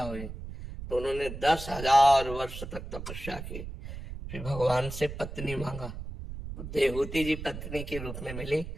हुई, तो उन्होंने 10,000 वर्ष तक तपस्या की, फिर भगवान से पत्नी मांगा, तो देहूति जी पत्नी के रूप में मिली,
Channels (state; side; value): noise; right; rumble, 9 dB below the sound